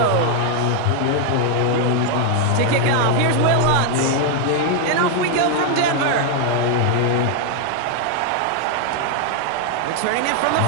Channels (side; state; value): both; different; correlation 0.00